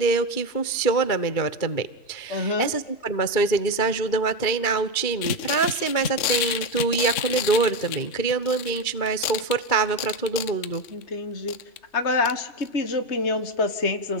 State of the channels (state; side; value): late; right; 2.3 ms